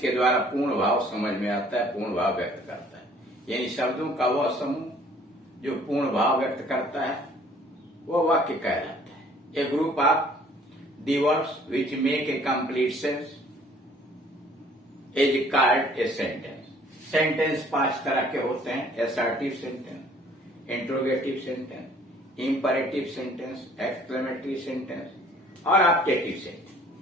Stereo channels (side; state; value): both; normal; correlation 0.56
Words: द्वारा पूर्ण भाव समझ में आता है, पूर्ण भाव व्यक्त करता है। यानी शब्दों का वह समूह जो पूर्ण भाव व्यक्त करता है वह वाक्य कहलाता है। A group of the words which make a complete sense is called a sentence. Sentence 5 तरह के होते हैं: assertive sentence, interrogative sentence, imperative sentence, exclamatory sentence और ऑब्जेक्टिव